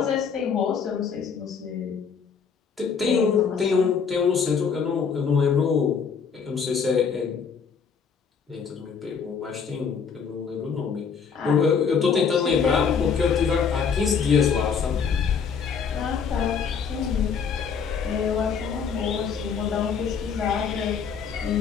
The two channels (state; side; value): quieter; right; 6.3 dB